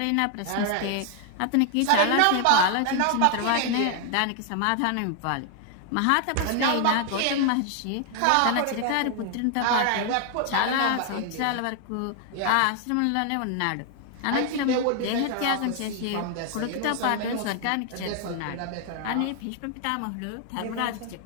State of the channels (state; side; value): different; both; correlation 0.00